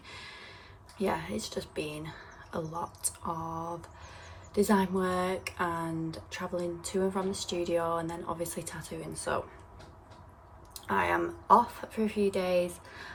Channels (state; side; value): identical; both; correlation 1.00